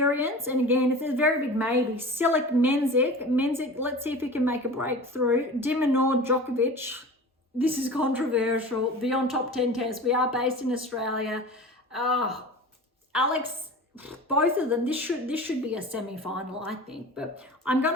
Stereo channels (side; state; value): both; normal; correlation 0.36